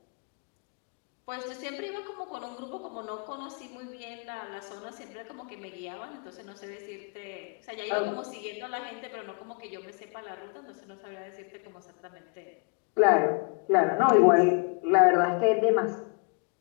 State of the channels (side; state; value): right; quieter; 36.9 dB